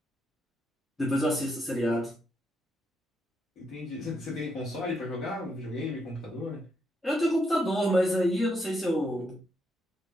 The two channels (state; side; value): normal; both; correlation 0.79